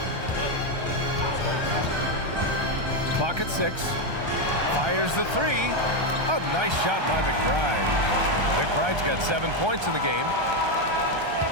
Clock at 6. Fires the 3. A nice shot by McBride. McBride's got 7 points in the game.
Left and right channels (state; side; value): late; left; 1.3 ms